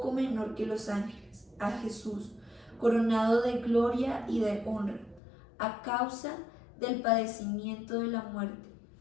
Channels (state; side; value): drops out; right; at 5.2 s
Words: menor que los ángeles, a Jesús, coronado de gloria y de honra, a causa del padecimiento de la muerte,